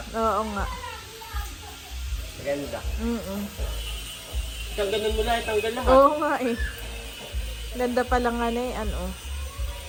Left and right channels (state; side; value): identical; both; correlation 1.00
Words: Oo nga. Maganda. Mm-mm. Tanggalan mo lang, tanggal lahat. Oo nga eh. Ganda pa lang nga na eh, ano. Oh.